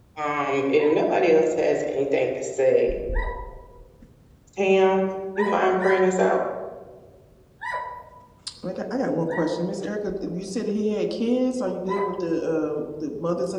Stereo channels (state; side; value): identical; both; correlation 1.00